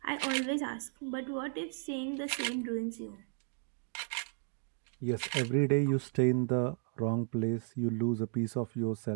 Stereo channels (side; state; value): left; quieter; 37.6 dB